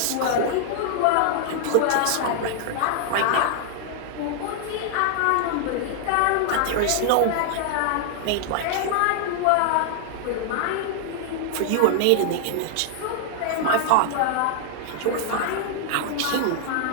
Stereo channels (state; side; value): different; both; correlation 0.00